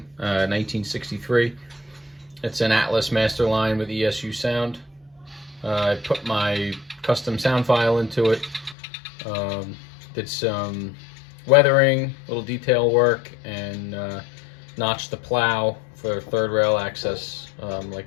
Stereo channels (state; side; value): drops out; right; at 8.8 s